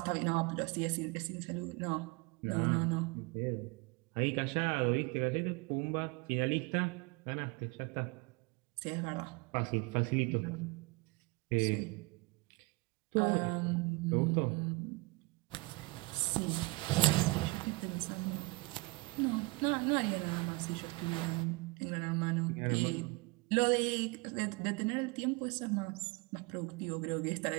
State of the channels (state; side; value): quieter; left; 26.3 dB